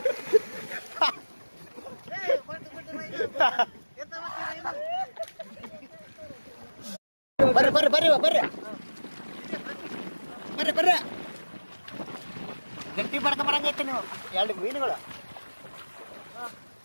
ಬರ್ರಿ ಬರ್ರಿ ಬರ್ರಿ ಬರ್ರಿ ಬರ್ರಿ ಬರ್ರಿ ಗಟ್ಟಿ ಬಡ್ಕ ಬರಂಗೈತೆ ನೀವು ಎರಡು ಮೀನುಗಳು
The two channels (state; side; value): inverted; both; correlation -1.00